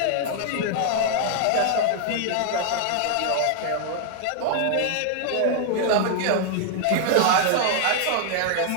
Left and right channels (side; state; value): both; different; correlation 0.00